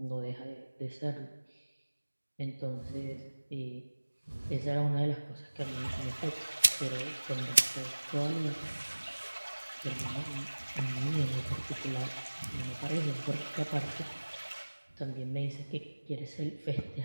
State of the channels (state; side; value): inverted; both; correlation -1.00